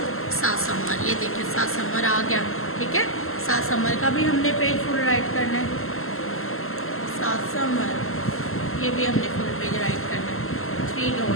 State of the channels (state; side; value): late; right; 0.62 ms